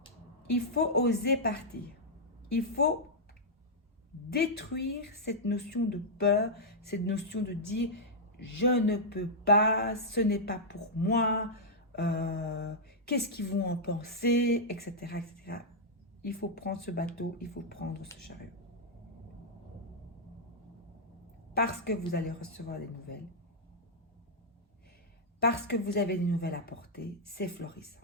Il faut oser partir. Il faut détruire cette notion de peur, cette notion de dire je ne peux pas, ce n'est pas pour moi, qu'est-ce qu'ils vont en penser, etc., etc. Il faut prendre ce bateau, il faut prendre ce chariot. Parce que vous allez recevoir des nouvelles. Parce que vous avez des nouvelles à porter, c'est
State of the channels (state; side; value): normal; both; correlation -0.07